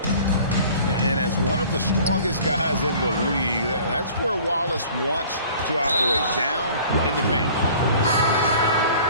And as one of the strongest guys in the league, that's where Wallace wants to operate, down in the paint.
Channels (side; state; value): both; inverted; correlation -0.48